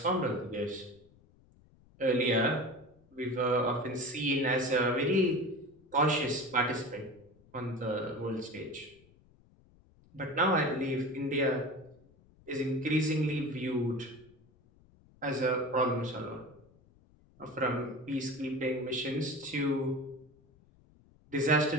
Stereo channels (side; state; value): left; noise; rumble, 28 dB below the sound